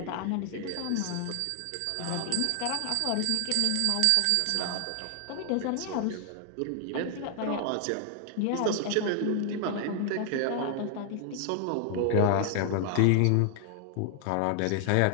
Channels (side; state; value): both; different; correlation 0.00